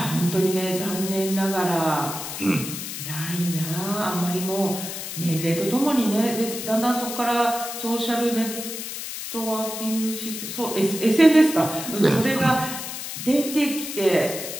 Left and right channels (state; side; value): noise; left; hiss, 7 dB below the sound